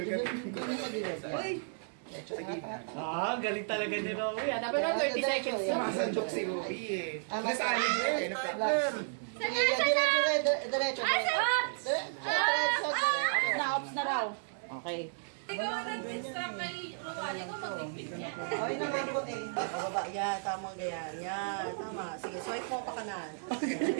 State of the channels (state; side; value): silent; left; digital silence